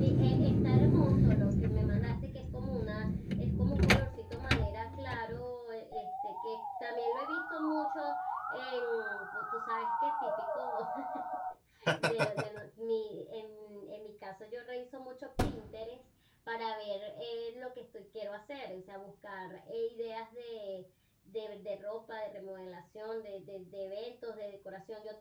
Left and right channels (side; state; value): both; identical; correlation 1.00